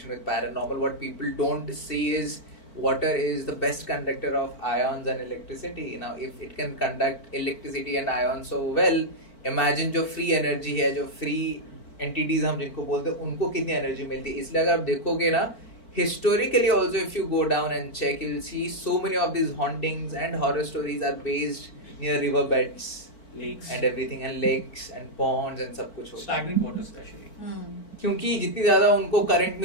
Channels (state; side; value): late; right; 4.5 ms